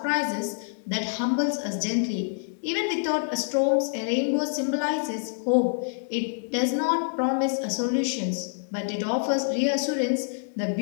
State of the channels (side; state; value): right; silent; digital silence